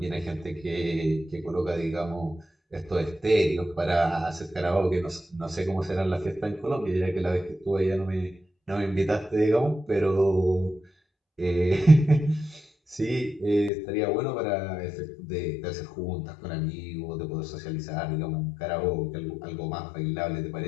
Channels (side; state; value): right; drops out; at 13.7 s